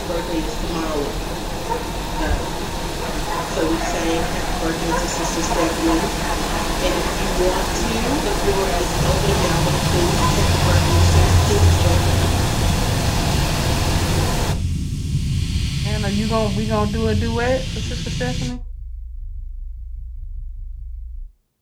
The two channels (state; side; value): identical; both; correlation 1.00